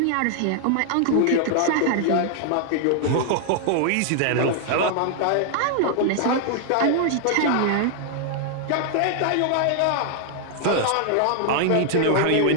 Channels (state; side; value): different; both; correlation 0.00